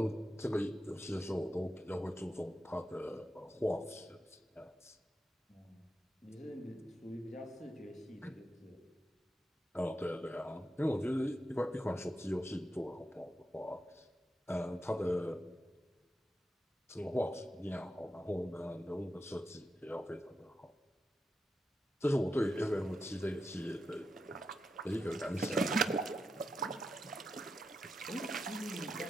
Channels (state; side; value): normal; both; correlation 0.87